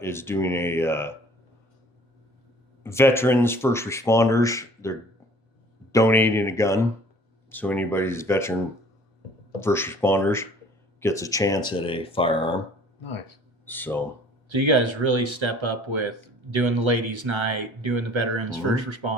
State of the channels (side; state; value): both; normal; correlation 0.52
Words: is doing a veterans first responders. They're donating a gun, so anybody's veteran first responders gets a chance at a firearm. Nice. So you guys really step up with doing the ladies' night, doing the veterans first